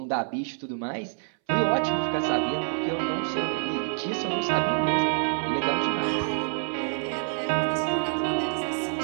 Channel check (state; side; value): silent; left; 60 dB below the other